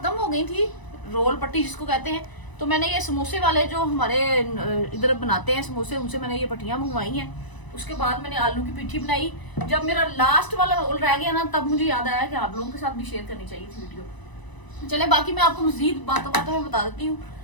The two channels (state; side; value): late; right; 1.0 ms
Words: हो गई थी, रोल पट्टी जिसको कहते हैं। तो मैंने ये समोसे वाले जो हमारे इधर बनाते हैं समोसे, उनसे मैंने ये पट्टियां मंगवाई हैं। उसके बाद मैंने आलू की पिट्ठी बनाई। जब मेरा लास्ट वाला रोल रह गया ना, तब मुझे याद आया कि आप लोगों के साथ भी शेयर करनी चाहिए थी वीडियो। चले बाकी मैं आपको मजीद बातों बातों में बता देती हूँ।